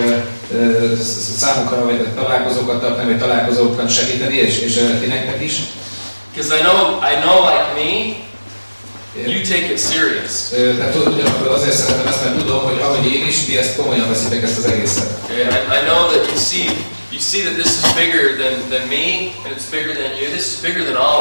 számukra vagy találkozókat tartani, vagy találkozókat segíteni, és ti nektek is. Because I know like me, you take it serious. Tehát ugyanakkor azért szeretem ezt, mert tudom, hogy ahogy én is, ti ezt komolyan veszitek ezt az egészet. Okay, I know that you see that this is bigger than me, and it's bigger than you. This is bigger than all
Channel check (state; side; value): inverted; both; correlation -1.00